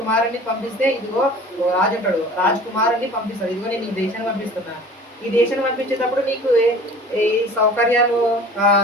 పంపిస్తే ఇదిగో ఒక రాజు అంటాడు, రాజకుమారుని పంపిస్తాడు, ఇదిగో నేను ఈ దేశాన్ని పంపిస్తున్నా. ఈ దేశాన్ని పంపించేటప్పుడు నీకు ఈ సౌకర్యాలు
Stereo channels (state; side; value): normal; both; correlation 0.44